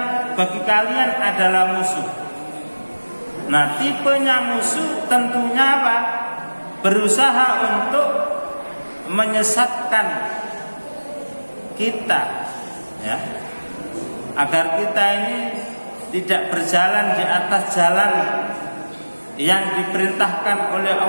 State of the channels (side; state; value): both; inverted; correlation -1.00